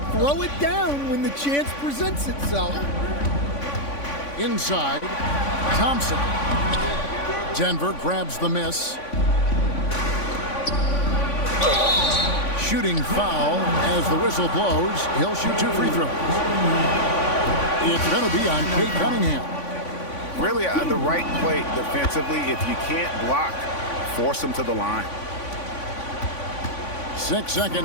throw it down when the chance presents itself. Inside, Thompson. Denver grabs the miss. Shooting foul as the whistle blows. He'll shoot 2 free throws. It's going to be on Cade Cunningham. Really the right play defensively. If you can't block, force him to the line. 6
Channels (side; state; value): right; late; 3.5 ms